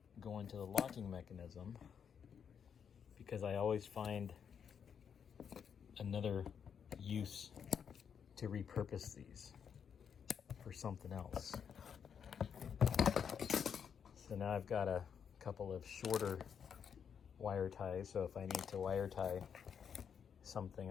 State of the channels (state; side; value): quieter; right; 7.4 dB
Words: go into the locking mechanism, because I always find another use to repurpose these for something else. So now I've got a couple of shorter wire ties, so if I need to wire tie